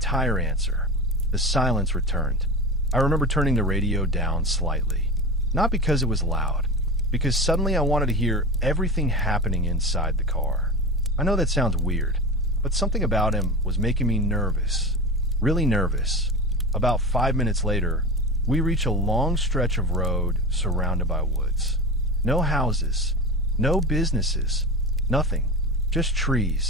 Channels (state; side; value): normal; both; correlation 0.31